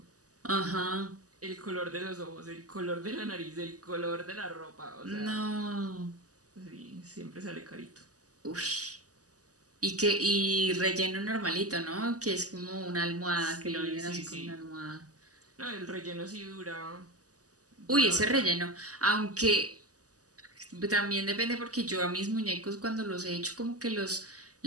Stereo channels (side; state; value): left; late; 0.67 ms